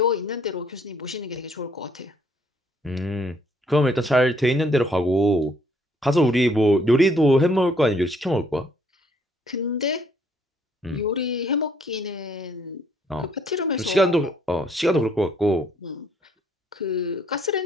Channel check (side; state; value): both; normal; correlation 0.65